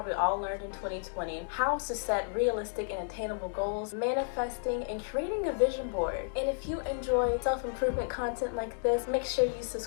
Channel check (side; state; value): right; silent; digital silence